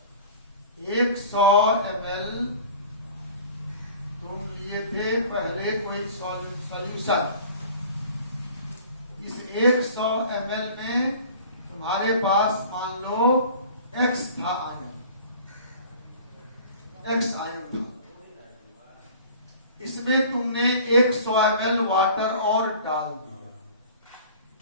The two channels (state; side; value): inverted; both; correlation -0.45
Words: 100 ml तुम लिए थे पहले कोई सॉल्यूशन, इस 100 ml में तुम्हारे पास मान लो x था आयन, x आयन था, इसमें तुमने 100 ml वाटर और डाल दिया,